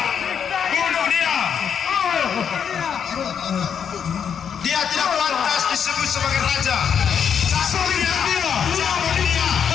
Bunuh dia! Dia tidak pantas disebut sebagai raja. Cambuk dia! Cambuk dia!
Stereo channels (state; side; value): quieter; right; 7.6 dB